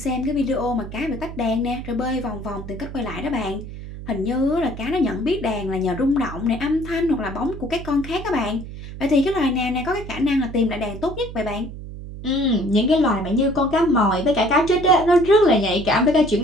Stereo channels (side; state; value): right; noise; hum, 11 dB below the sound